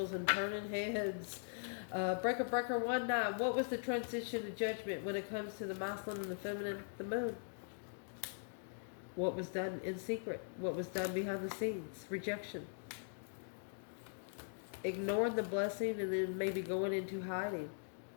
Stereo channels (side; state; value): right; silent; digital silence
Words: and turning heads. Breaker 19, what was the transition to judgment when it comes to the masculine and the feminine? The moon. What was done in secret? What was done behind the scenes? Rejection. Ignoring the blessing and then maybe going into hiding.